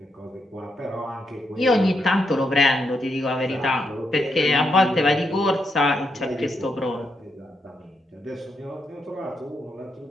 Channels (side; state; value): both; normal; correlation 0.81